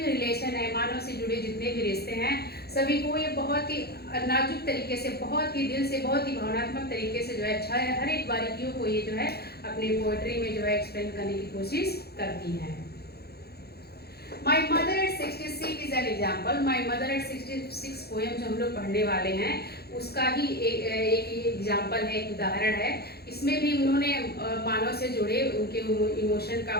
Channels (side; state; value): right; late; 0.46 ms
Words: रिलेशन है, मानव से जुड़े जितने भी रिश्ते हैं, सभी को ये बहुत ही नाजुक तरीके से, बहुत ही दिल से, बहुत ही भावनात्मक तरीके से जो है हर एक बारीकियों को ये जो है अपनी पोएट्री में जो है एक्सप्लेन करने की कोशिश करती हैं। My mother at 66 is an example। My mother at 66 poem जो हम लोग पढ़ने वाले हैं उसका ही एक एग्जाम्पल है, एक उदाहरण है। इसमें भी उन्होंने मानव से जुड़े उनके इमोशन का